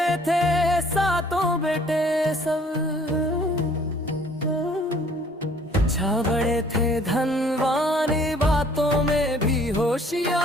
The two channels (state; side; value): normal; both; correlation 0.57